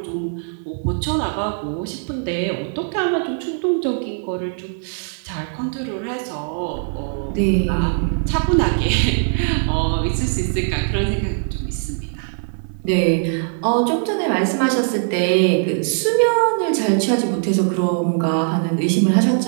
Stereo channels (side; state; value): left; silent; digital silence